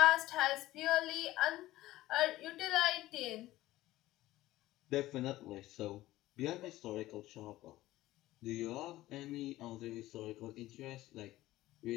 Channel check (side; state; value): right; quieter; 16.4 dB